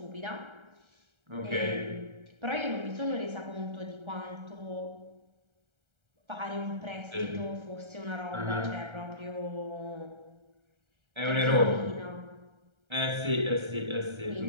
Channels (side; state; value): left; late; 1.3 ms